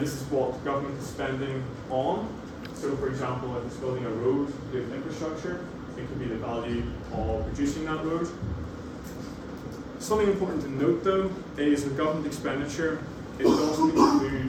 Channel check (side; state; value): both; identical; correlation 1.00